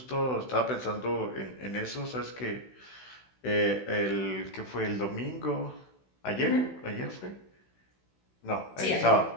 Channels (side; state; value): right; late; 16 ms